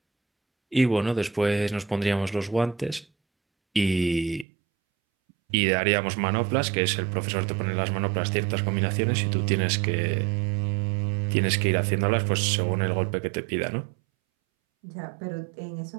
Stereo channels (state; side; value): drops out; left; at 4.5 s